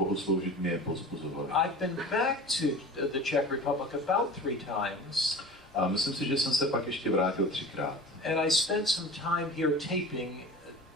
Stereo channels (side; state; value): both; normal; correlation 0.37